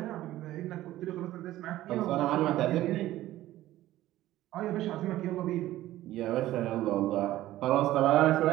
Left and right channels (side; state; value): left; quieter; 15.0 dB